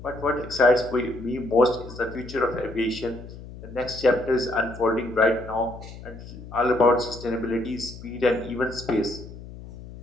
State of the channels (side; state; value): left; noise; hum, 14 dB below the sound